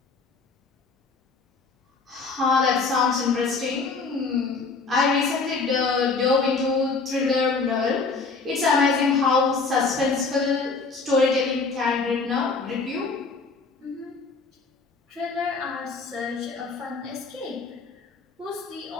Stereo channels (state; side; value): quieter; right; 4.3 dB